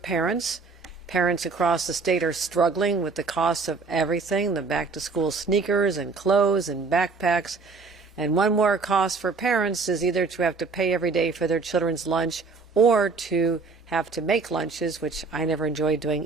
Parents across the state are struggling with the cost of everything, the back-to-school sneakers and clothes and backpacks. And one more cost for parents is either to have to pay every day for their children's lunch or to have to make lunches, which I never enjoyed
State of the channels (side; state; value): left; quieter; 4.5 dB